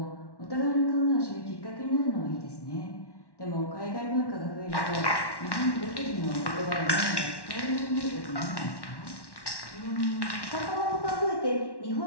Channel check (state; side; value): late; right; 1.1 ms